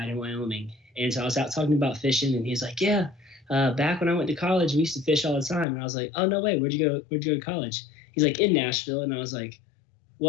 in Wyoming, and so I was out talking about fishing, and he's like, yeah. Back when I went to college, we used to fish all the time. And I was like, oh, no way. Where'd you go to college? He's like, in Nashville. And I was like,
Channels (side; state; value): right; drops out; at 5.7 s